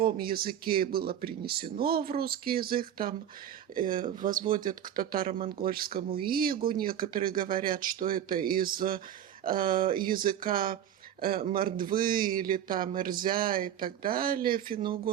языке и было принесено в русский язык, там возводят к татаро-монгольскому игу. Некоторые говорят, что это из языка мордвы или там эрзя и так далее,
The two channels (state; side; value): quieter; left; 10.3 dB